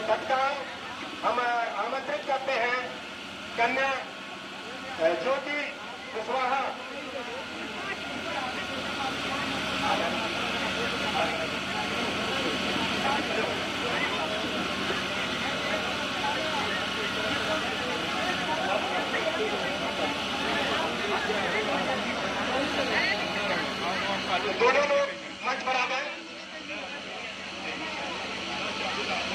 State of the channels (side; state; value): both; identical; correlation 1.00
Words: तत्काल हम आमंत्रित करते हैं कन्या ज्योति कुशवाहा। दोनों लोग मंच पर आ गए।